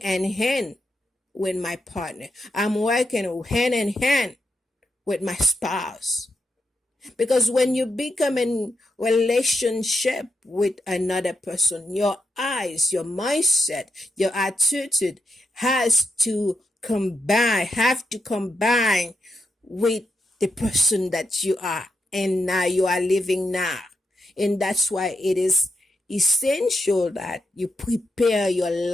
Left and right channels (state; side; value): normal; both; correlation 0.84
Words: in hand with my partner. I'm working hand in hand with my spouse. Because when you become in relationship with another person, your eyes, your mindset, your attitude have to combine with the person that you are and now you are living now. And that's why it is essential that you prepare your